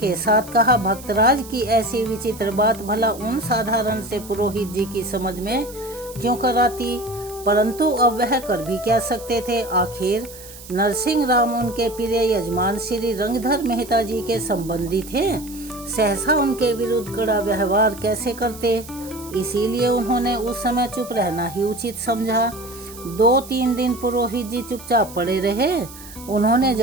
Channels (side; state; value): right; noise; hiss, 17 dB below the sound